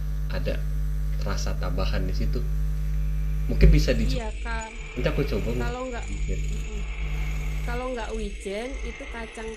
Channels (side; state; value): both; identical; correlation 1.00